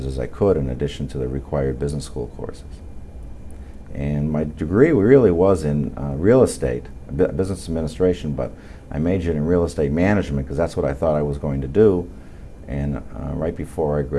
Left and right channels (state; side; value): identical; both; correlation 1.00